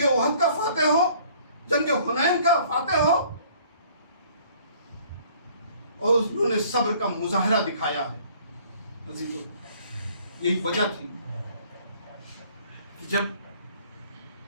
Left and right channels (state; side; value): inverted; both; correlation -0.56